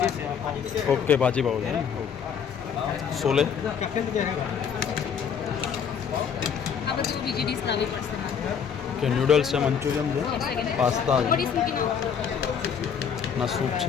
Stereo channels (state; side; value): quieter; right; 7.3 dB